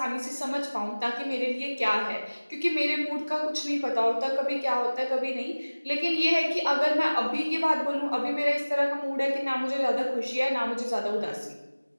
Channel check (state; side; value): inverted; both; correlation -1.00